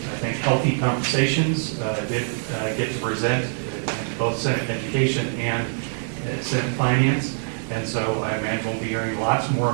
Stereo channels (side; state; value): left; silent; digital silence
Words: I think, healthy conversations. Did get to present in both Senate Education and Senate Finance, and so I imagine we'll be hearing lots more